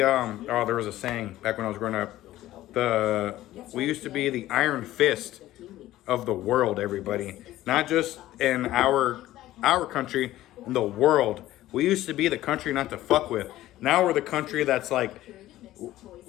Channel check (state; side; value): quieter; right; 15.0 dB